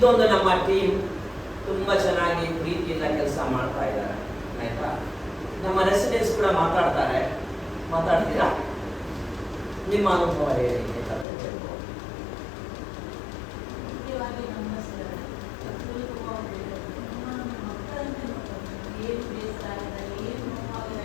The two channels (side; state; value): right; drops out; at 11.2 s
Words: ನಮ್ಮ ಟೀಮ್ ತುಂಬ ಚೆನ್ನಾಗಿ ಪ್ರೀತಿಯಿಂದ ಕೆಲಸ ಮಾಡ್ತಾ ಇದ್ದಾರೆ, ಆಯ್ತಾ. ನಮ್ಮ ರೆಸಿಡೆನ್ಸ್ ಕೂಡ ಮಾತಾಡ್ತೀರಾ, ನಿಮ್ಮ ಅನುಭವ ಹೇಳಿ ಬೇಕಾದ್ರೆ ಹೇಳ್ಬೋದು. ಮುಖ್ಯವಾಗಿ ನಮ್ಮ ಮಕ್ಕಳಂತೆ ಏನು ಬೇಸರ ಆಗಿದ್ದಾರೆ, ಏನು